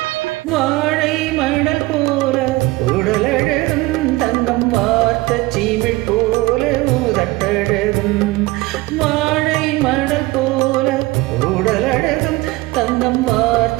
வாழை மணல் போல உடலழகும், தங்கம் வார்த்த சீமிழ் போல உதட்டழகும். வாழை மணல் போல உடலழகும், தங்கம்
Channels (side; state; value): left; quieter; 20.8 dB